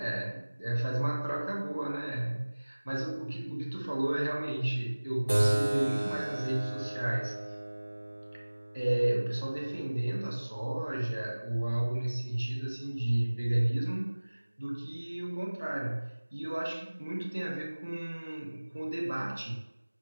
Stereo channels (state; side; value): inverted; both; correlation -1.00